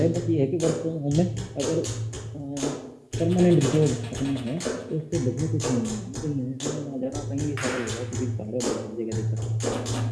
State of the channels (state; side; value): identical; both; correlation 1.00